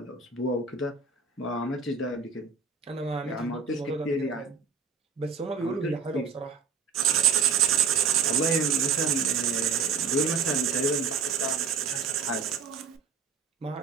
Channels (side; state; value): left; quieter; 5.5 dB